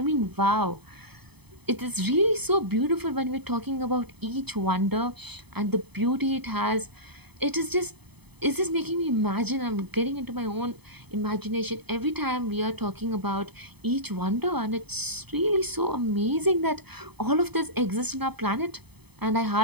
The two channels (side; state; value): left; late; 0.98 ms